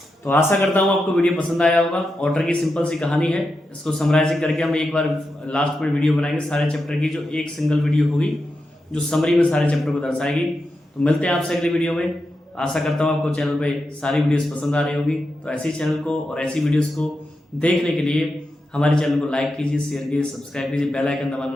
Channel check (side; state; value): both; normal; correlation 0.88